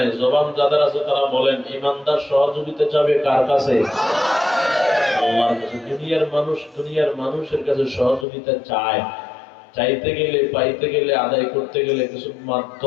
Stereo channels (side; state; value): right; drops out; at 8.2 s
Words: জবান যাদের আছে তারা বলেন, ঈমানদার সহযোগিতা চাবে কার কাছে? আল্লাহর কাছে। দুনিয়ার মানুষের কাছে সহযোগিতা চায়। চাইতে গেলে, পাইতে গেলে, আদায় করতে গেলে কিছু